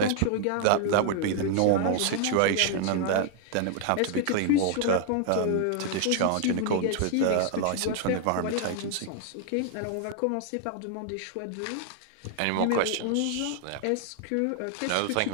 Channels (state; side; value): different; both; correlation 0.00